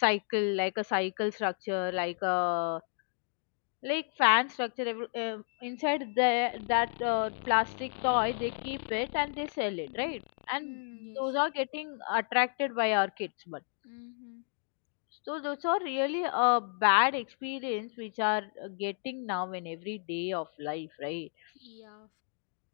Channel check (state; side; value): silent; right; digital silence